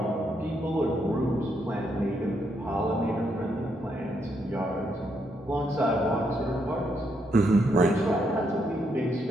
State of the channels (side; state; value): both; normal; correlation 0.77